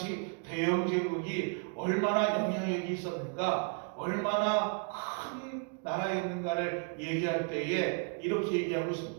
대영 제국이 얼마나 영향력이 있었는가, 얼마나 큰 나라였는가를 얘기할 때에 이렇게 얘기하고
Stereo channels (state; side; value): quieter; left; 39.1 dB